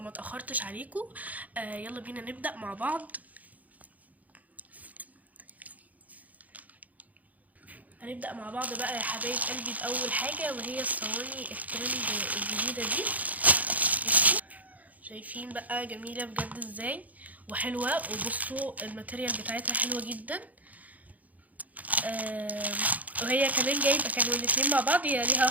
اتاخرتش عليكم. يلا بينا نبدأ مع بعض. هنبدأ مع بعض بقى يا حبايب قلبي بأول حاجة، وهي الصواني الترند الجديدة دي. شايفين بقى جميلة بجد ازاي وحلوة، وبصوا الماتيريال بتاعتها حلوة جدا. وهي كمان جايبه، كانوا الاتنين مع بعض، هي ليها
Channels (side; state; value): left; late; 0.076 ms